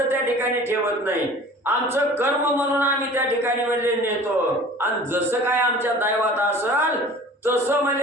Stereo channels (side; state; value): both; normal; correlation 0.44